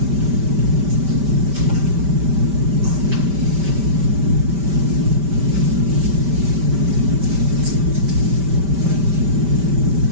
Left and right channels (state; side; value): late; left; 5.1 ms